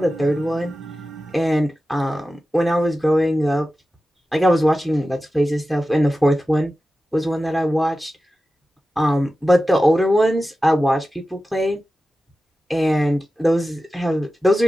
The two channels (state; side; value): normal; both; correlation 0.94